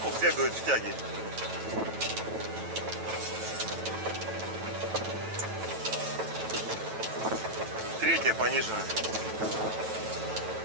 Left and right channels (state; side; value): late; left; 9.1 ms